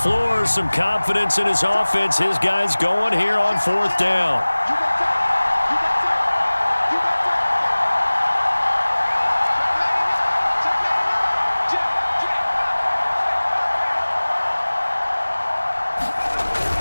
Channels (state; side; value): inverted; both; correlation -1.00